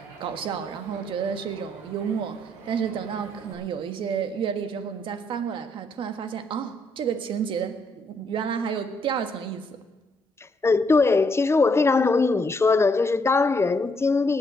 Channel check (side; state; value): both; normal; correlation 0.72